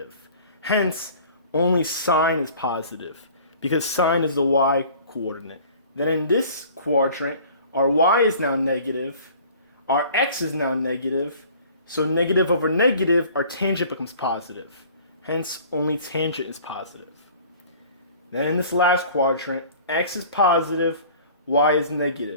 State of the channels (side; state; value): both; inverted; correlation -0.48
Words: Hence, only sine is positive, because sine is the y coordinate. Then in this quadrant, our y is now negative, our x is now negative, so negative over negative, our tangent becomes positive. Hence, only tangent is positive. Then in this last quadrant, x is positive, y is